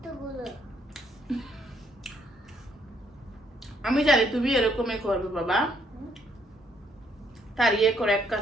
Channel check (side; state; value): both; normal; correlation 0.69